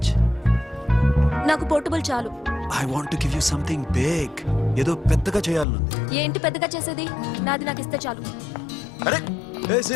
నాకు పోర్టబుల్ చాలు. I want to give you something big. ఏదో పెద్దగా చేయాలనుంది. ఏంటి పెద్దగా చేసేది? నాది నాకు ఇస్తే చాలు. అరే ఏ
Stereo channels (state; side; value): drops out; right; at 5.7 s